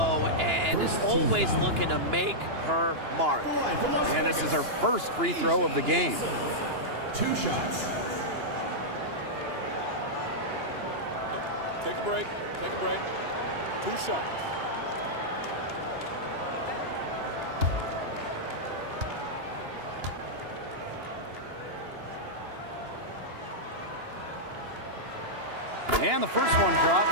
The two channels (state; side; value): late; left; 2.9 ms